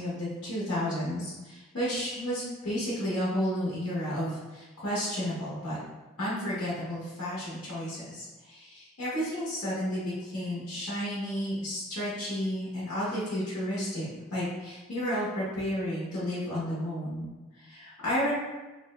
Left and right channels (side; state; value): both; normal; correlation 0.54